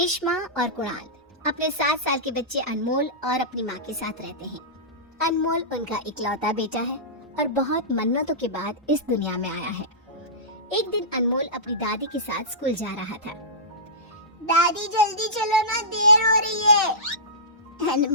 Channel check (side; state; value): both; normal; correlation -0.18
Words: और कुणाल अपने 7 साल के बच्चे अनमोल और अपनी माँ के साथ रहते हैं। अनमोल उनका इकलौता बेटा है और बहुत मन्नतों के बाद इस दुनिया में आया है। एक दिन अनमोल अपनी दादी के साथ स्कूल जा रहा था। दादी जल्दी चलो ना, देर हो रही है।